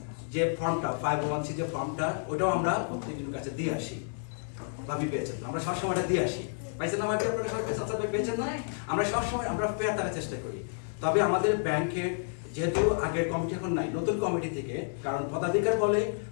যে ফর্মটা 501c যে ফর্মটা, ওটাও আমরা প্রত্যেকজনের কাছে দিয়ে আসি। ভাবি পেয়েছেন, আমরা সবসময় দিয়ে আসি, পাইছেন না ভাবি? আপনারা সবাই পেয়েছেন না? আমরা সবসময় আমরা ফেয়ার তারা চেষ্টা করি। তবে আমাদের ব্যাংকের যেহেতু আগের কমিটি এখন নাই, নতুন কমিটি থেকে, কারণ পদাধিকার বলে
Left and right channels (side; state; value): right; silent; 58 dB below the other